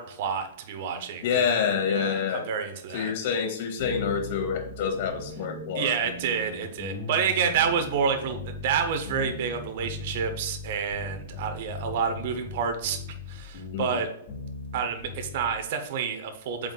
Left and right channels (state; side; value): inverted; both; correlation -0.31